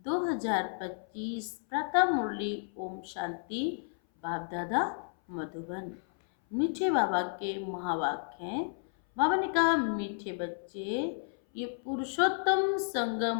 प्रथम मुरली ओम शांति। बाप दादा मधुबन। मीठे बाबा के महावाक्य हैं। बाबा ने कहा, मीठे बच्चे, ये पुरुषोत्तम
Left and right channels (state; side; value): silent; right; 56 dB below the other